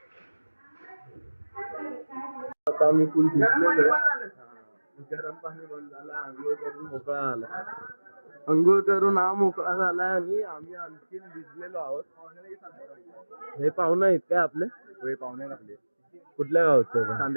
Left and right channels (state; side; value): inverted; both; correlation -1.00